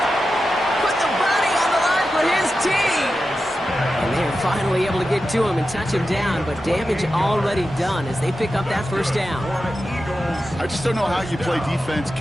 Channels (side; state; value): both; normal; correlation 0.91